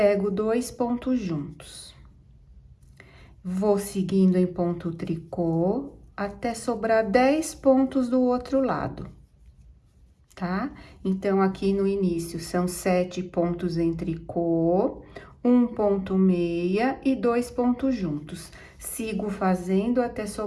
2 pontos juntos. Vou seguindo em ponto tricô até sobrar 10 pontos do outro lado, tá? Então, aqui no início são 7 pontos em tricô, 1 ponto meia e 2 pontos juntos. Sigo fazendo até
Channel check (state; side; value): identical; both; correlation 1.00